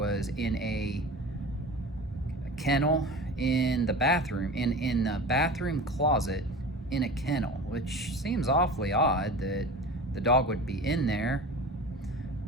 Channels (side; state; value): both; normal; correlation 0.35